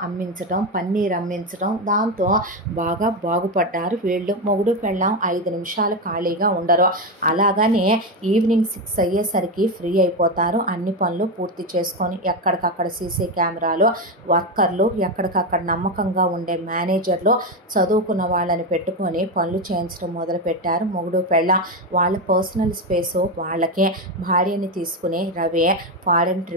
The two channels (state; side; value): normal; both; correlation 0.12